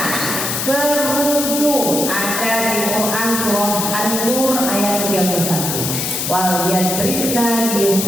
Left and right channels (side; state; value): left; noise; hiss, 2 dB below the sound